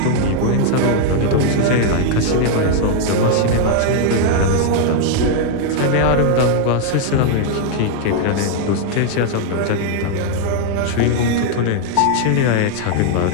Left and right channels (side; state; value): both; different; correlation 0.00